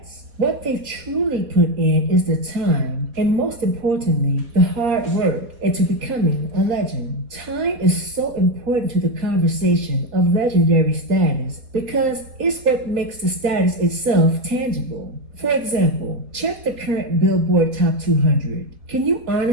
what they've truly put in is the time and most importantly, the hard work into becoming a legend. Time is so important to the conversation of legendary status because it's what makes the status itself tangible. For example, check the current Billboard Top 200. Can you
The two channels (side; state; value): left; late; 4.2 ms